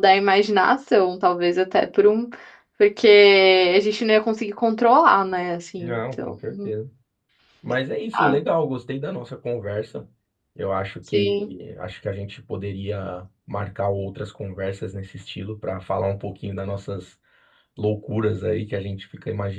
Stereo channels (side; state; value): both; identical; correlation 1.00